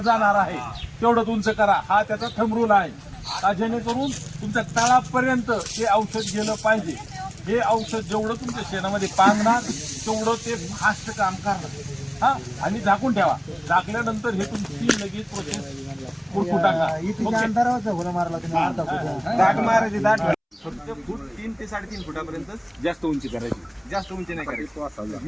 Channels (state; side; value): identical; both; correlation 1.00